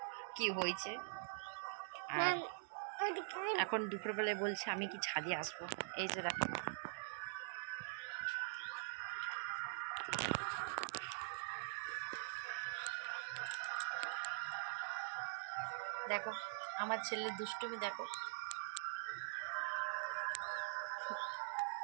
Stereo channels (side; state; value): left; silent; digital silence